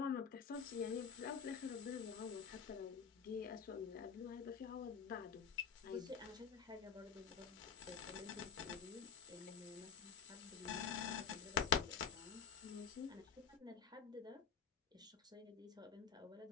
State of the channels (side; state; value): right; quieter; 6.6 dB